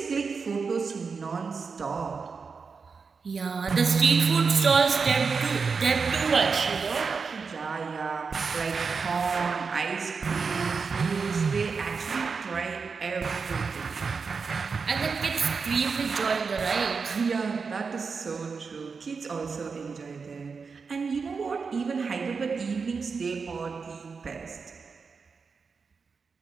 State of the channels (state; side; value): quieter; left; 5.1 dB